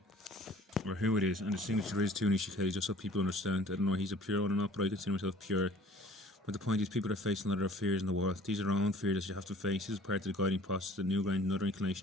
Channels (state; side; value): normal; both; correlation 0.51